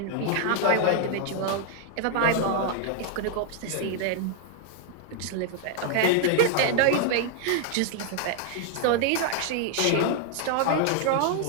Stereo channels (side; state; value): both; different; correlation 0.00